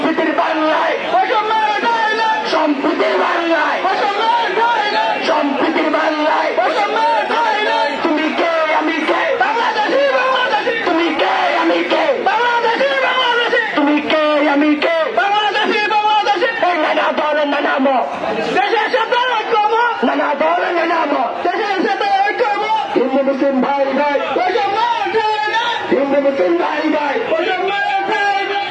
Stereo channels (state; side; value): identical; both; correlation 1.00